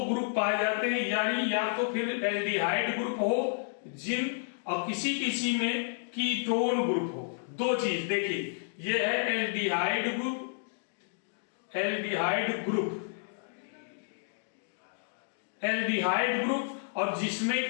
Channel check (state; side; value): silent; right; digital silence